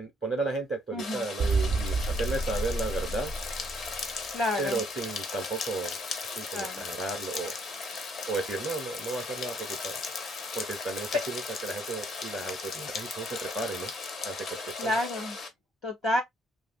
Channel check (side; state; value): both; normal; correlation 0.67